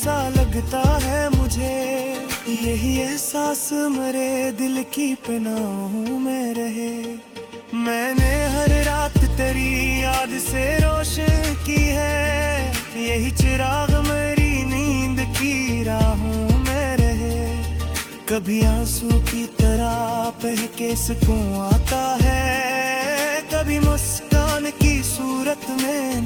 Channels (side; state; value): both; identical; correlation 1.00